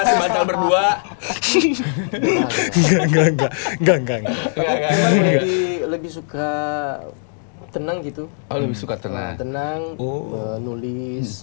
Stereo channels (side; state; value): right; silent; digital silence